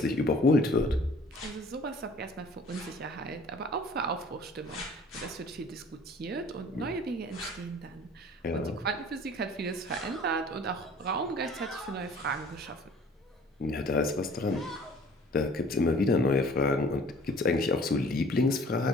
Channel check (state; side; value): normal; both; correlation 0.51